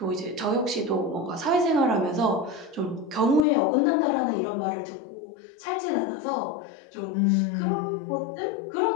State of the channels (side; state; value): right; drops out; at 3.5 s